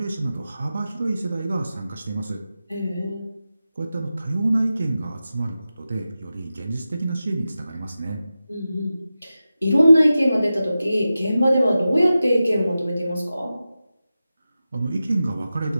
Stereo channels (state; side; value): inverted; both; correlation -0.93